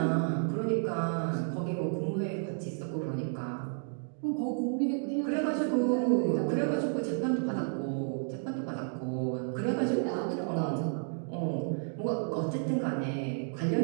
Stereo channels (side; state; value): left; silent; 57 dB below the other